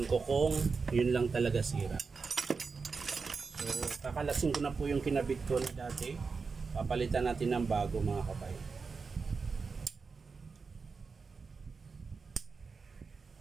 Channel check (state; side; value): quieter; left; 4.8 dB